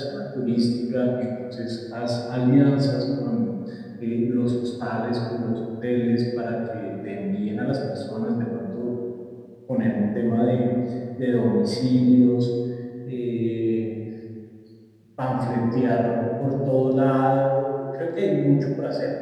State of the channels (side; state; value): both; identical; correlation 1.00